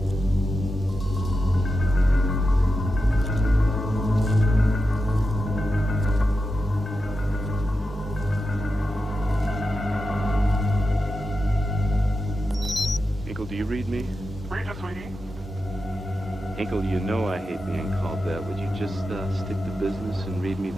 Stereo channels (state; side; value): normal; both; correlation 0.90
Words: Do you read me? Read you, sweetie. Hinkle, you know I hate being called that. Would you just stick to business and read me